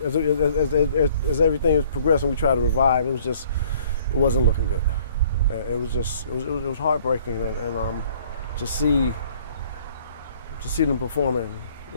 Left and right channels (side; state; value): both; inverted; correlation -0.57